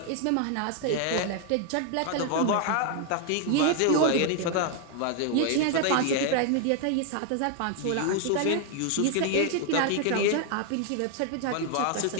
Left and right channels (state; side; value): different; both; correlation 0.00